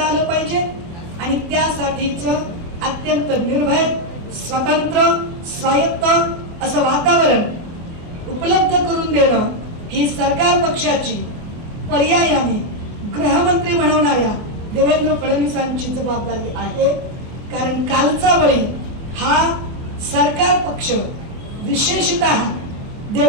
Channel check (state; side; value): late; left; 25 ms